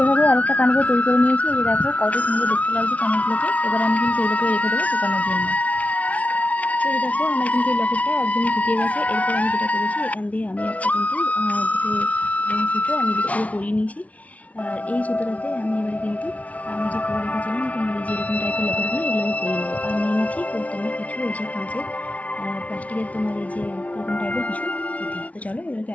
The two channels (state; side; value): late; right; 0.068 ms